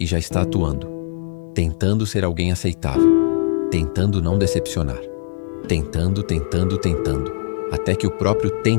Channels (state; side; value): silent; right; 66 dB below the other